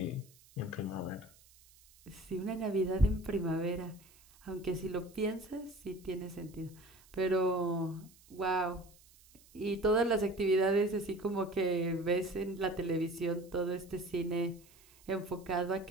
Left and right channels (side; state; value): right; noise; hiss, 26 dB below the sound